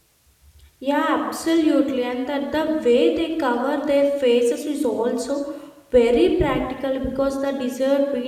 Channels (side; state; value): both; identical; correlation 1.00